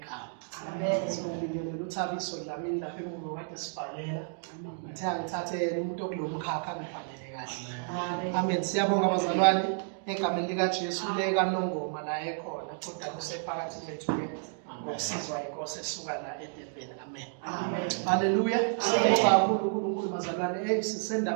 Amen. Sibingelela uThabiso Dlamini lapha emuva kade sibhalela. Ngithathe yena umuntu okulomkhakha ngibhalele kahle. Amen. Siyabonga abazalwane egameni lika Jesu leka Nongoma la ekhona kodwa kusephakathi kwethu ke ngokusizwa inkosi esuka la eDurban. Amen. Amen. Haleluya. Siyabonga kakhulu uNkulunkulu bazalwane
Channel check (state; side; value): silent; left; 57 dB below the other